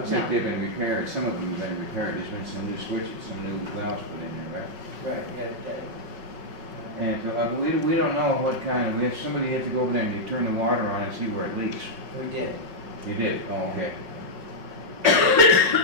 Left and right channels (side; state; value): left; late; 5.3 ms